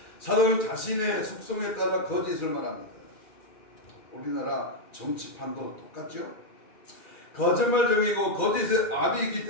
사도는 자신의 속성에 따라 거짓을 말합니다. 우리나라 정치판도 똑같죠. 거짓말쟁이고 거짓의 압이기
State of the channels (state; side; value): late; right; 2.4 ms